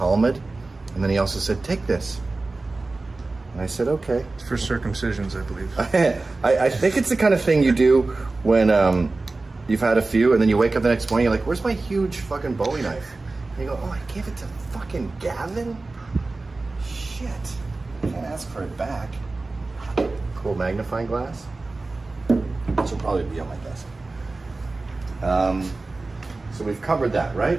and then he also said, take this. And I said, okay. It's for circumcisions, I believe. I think it's the kind of thing you do when you've had a few and then you wake up the next morning, you're like, where's my huge fucking Bowie knife? And you go, oh, I gave it to fucking Gavin? Shit. Can't ask for it back. Cool magnifying glass. This will probably be on my desk. So we've covered that,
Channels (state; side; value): quieter; left; 3.4 dB